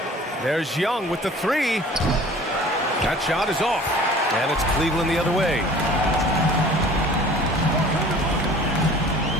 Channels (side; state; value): both; normal; correlation 0.47